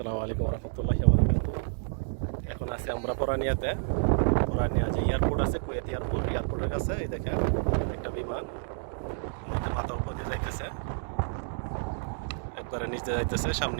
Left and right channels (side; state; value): left; silent; digital silence